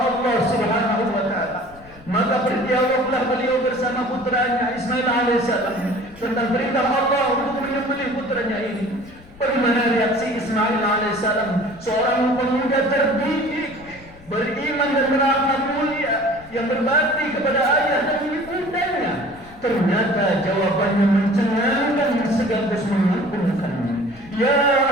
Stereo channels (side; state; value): left; noise; rumble, 23 dB below the sound